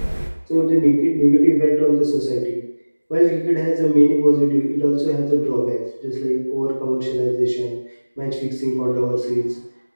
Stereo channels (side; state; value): both; inverted; correlation -1.00